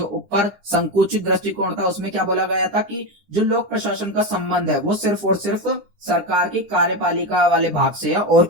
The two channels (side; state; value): left; late; 10 ms